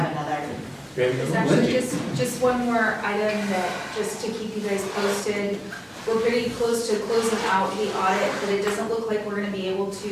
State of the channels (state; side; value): identical; both; correlation 1.00